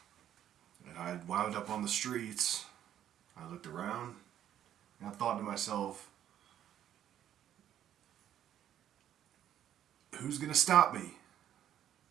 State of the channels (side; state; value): left; quieter; 10.8 dB